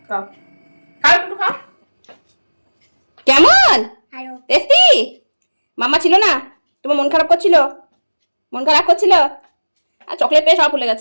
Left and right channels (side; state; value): both; inverted; correlation -1.00